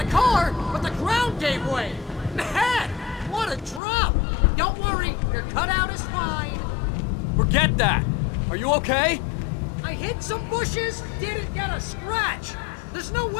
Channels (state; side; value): drops out; right; at 3.8 s